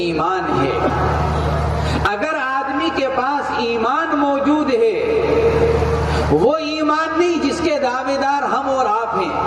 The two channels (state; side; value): identical; both; correlation 1.00